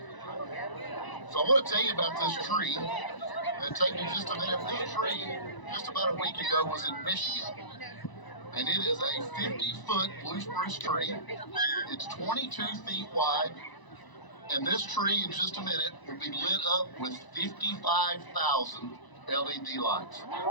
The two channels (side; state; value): right; late; 1.0 ms